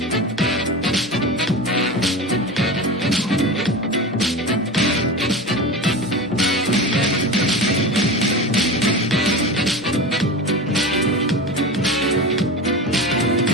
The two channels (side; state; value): both; normal; correlation 0.28